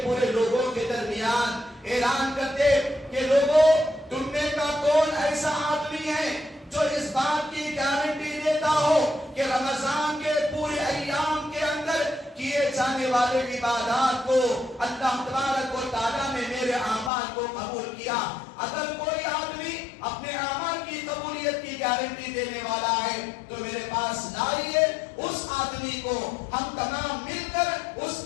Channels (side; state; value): right; drops out; at 17.1 s